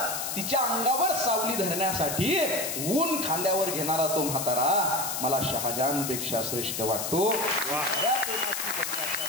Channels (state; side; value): noise; left; hiss, 3 dB below the sound